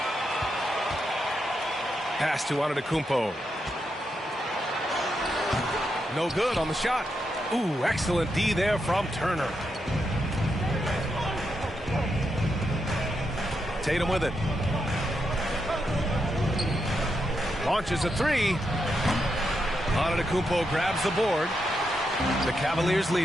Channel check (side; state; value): both; normal; correlation 0.83